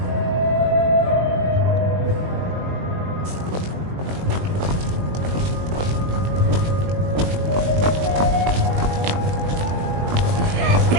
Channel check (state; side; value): late; left; 21 ms